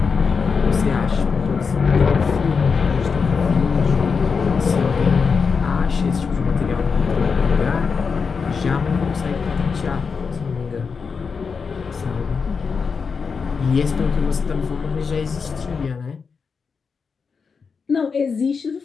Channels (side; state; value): right; quieter; 5.4 dB